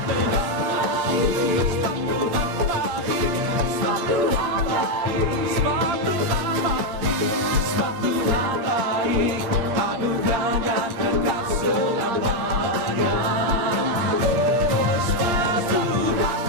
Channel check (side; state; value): left; late; 8.6 ms